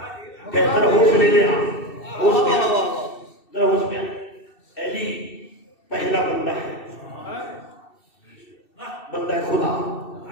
ذرا ہوش لے لے، ہوش میں ذرا ہوش میں. علی پہلا بندہ ہے، بندہ ہے خدا.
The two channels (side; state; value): right; late; 2.7 ms